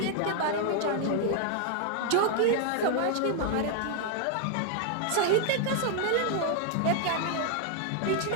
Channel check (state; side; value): different; both; correlation 0.00